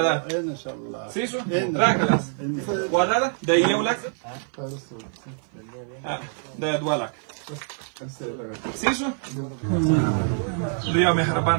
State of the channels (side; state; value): left; silent; 55 dB below the other